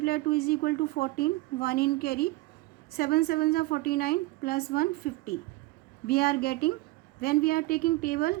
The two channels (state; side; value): quieter; left; 19.8 dB